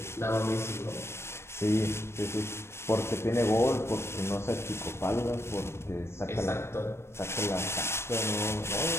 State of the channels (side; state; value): right; late; 0.12 ms